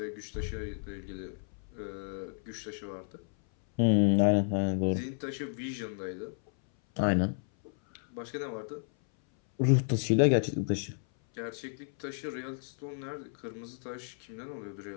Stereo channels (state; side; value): silent; right; 56 dB below the other